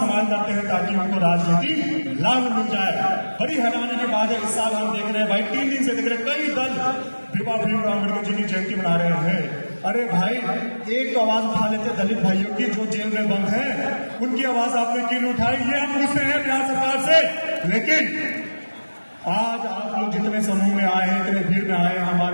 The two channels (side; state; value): both; inverted; correlation -1.00